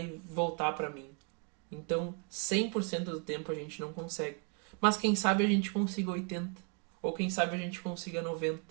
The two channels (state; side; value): quieter; left; 37.4 dB